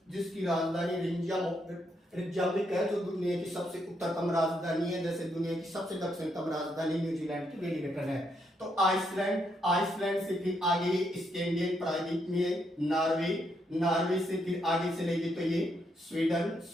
जिसकी राजधानी रिकयाविक है, जो दुनिया की सबसे उत्तरतम राजधानी है, जैसे दुनिया की सबसे दक्षिणतम राजधानी न्यूजीलैंड की वेलिंगटन है। तो आइसलैंड से फिर आगे स्कैंडिनेवियन प्रायद्वीप में नॉर्वे से फिर आगे चलेगी तो ये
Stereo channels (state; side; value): normal; both; correlation 0.77